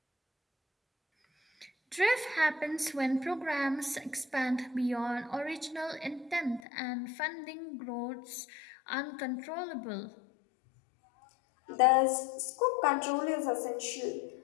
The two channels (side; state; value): right; drops out; at 6.6 s